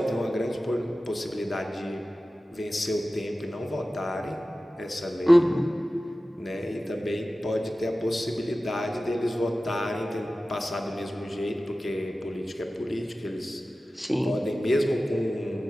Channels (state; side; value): normal; both; correlation 0.95